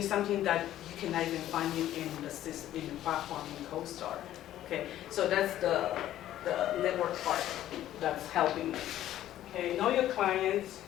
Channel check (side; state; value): right; quieter; 12.8 dB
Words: that you cannot even find it in the system, in the platform in CoStar. Okay, so that's the network part that's helping me. Okay, know your clients,